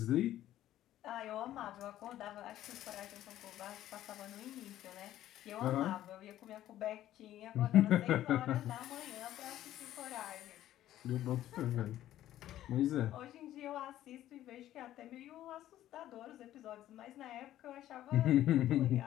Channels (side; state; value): right; quieter; 13.1 dB